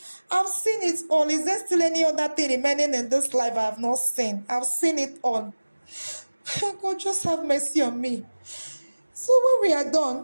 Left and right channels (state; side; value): inverted; both; correlation -1.00